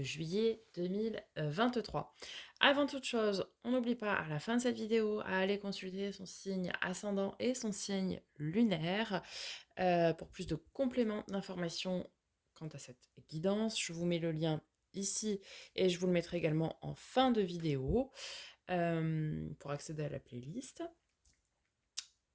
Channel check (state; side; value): identical; both; correlation 1.00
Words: juillet 2023. Avant toute chose, on n'oublie pas à la fin de cette vidéo à aller consulter son signe ascendant et son signe lunaire pour plus de compléments d'informations quant à cette guidance. Je vous mets le lien ici et je vous le mettrai également en fin de vidéo pour accéder à la playlist.